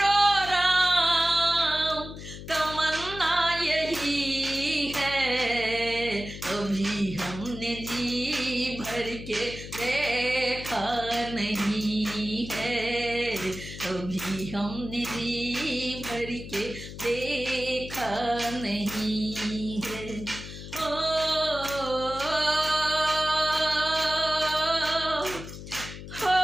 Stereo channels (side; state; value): left; noise; hum, 11 dB below the sound